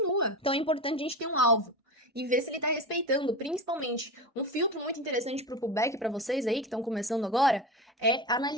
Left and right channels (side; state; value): both; normal; correlation 0.24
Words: Então é importante a gente ter um alvo e ver se ele tá respeitando, principalmente. Um filtro muito interessante pro pullback para vocês aí que estão começando agora é